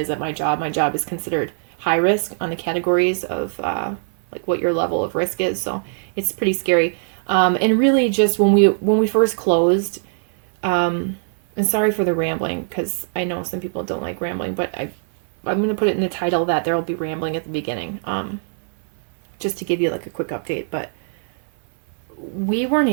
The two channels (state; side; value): silent; left; 59 dB below the other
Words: at my job. My job is considered high risk on the categories of what your level of risk is. So it's pretty scary. And really just when we first closed, and sorry for the rambling, because I know some people don't like rambling, but I'm going to put it in the title that there will be rambling at the beginning, just to give you a quick update. But we weren't